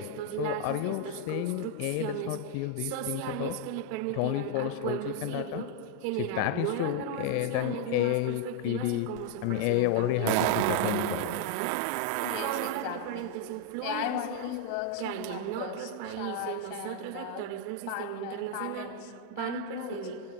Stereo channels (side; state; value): both; different; correlation 0.00